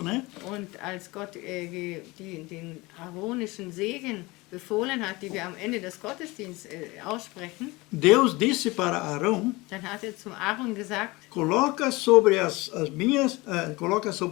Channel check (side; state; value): right; quieter; 22.7 dB